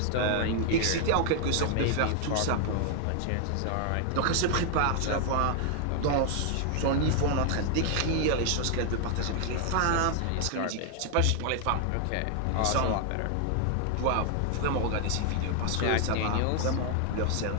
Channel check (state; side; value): different; both; correlation 0.00